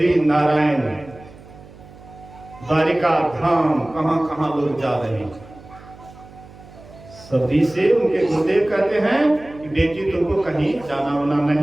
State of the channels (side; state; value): right; noise; hum, 20 dB below the sound